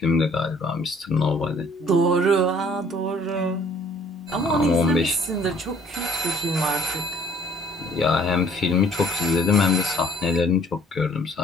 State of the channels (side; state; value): both; normal; correlation 0.57